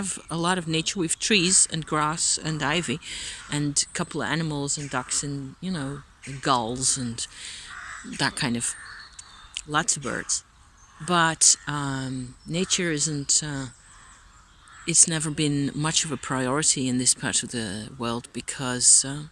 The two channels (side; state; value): both; identical; correlation 1.00